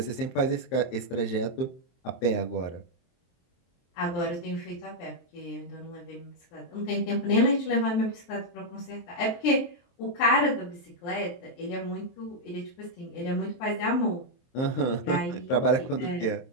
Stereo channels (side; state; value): right; late; 23 ms